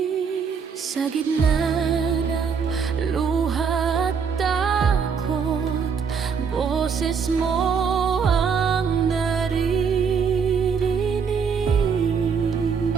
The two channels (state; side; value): quieter; left; 6.2 dB